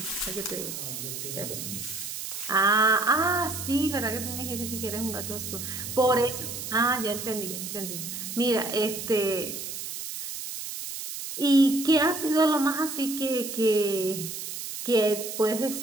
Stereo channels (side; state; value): right; noise; hiss, 7 dB below the sound